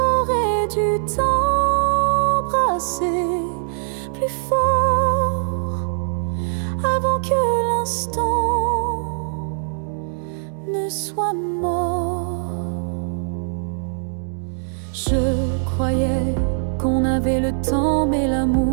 dû t'embrasser plus fort. que l'instant ne soit mort. Je croyais qu'on avait le temps, mais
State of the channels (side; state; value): left; silent; digital silence